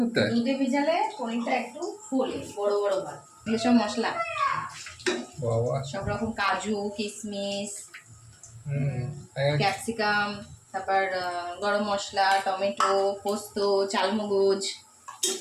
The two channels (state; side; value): identical; both; correlation 1.00